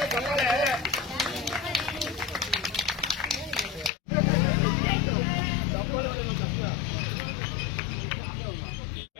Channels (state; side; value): drops out; right; at 3.9 s